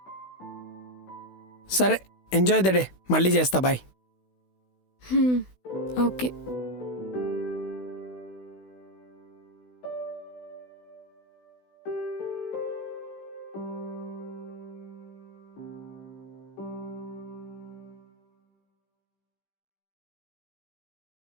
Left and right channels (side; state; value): right; late; 16 ms